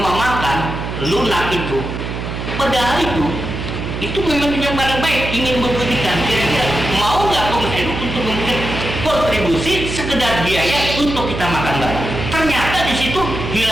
makan lunak itu, padahal itu memang yang paling baik ingin memberikan kira-kira mau nggak pengurus NU untuk memberikan kontribusi sekedar biaya untuk kita makan bareng. Ternyata di situ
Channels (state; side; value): noise; right; hum, 5 dB below the sound